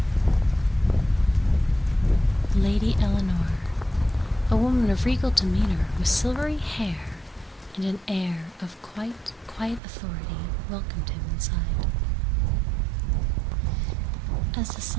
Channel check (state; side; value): drops out; left; at 9.8 s